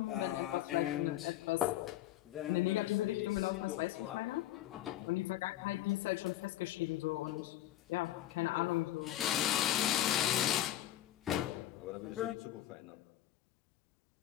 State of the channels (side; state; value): right; quieter; 13.6 dB